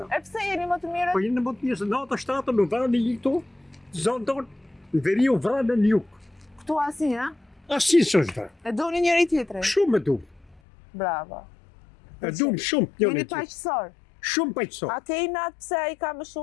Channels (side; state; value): right; drops out; at 10.6 s